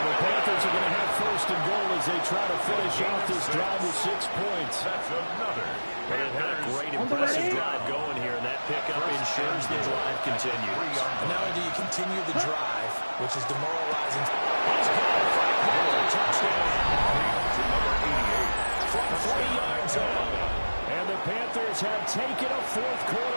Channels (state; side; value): inverted; both; correlation -1.00